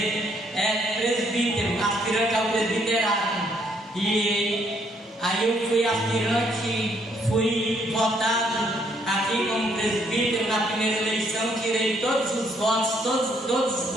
presbítero, aspirante ao presbiterado. E aí eu fui aspirante, fui votado aqui como presbítero na primeira eleição, tirei todos os votos, todos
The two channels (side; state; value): both; normal; correlation 0.69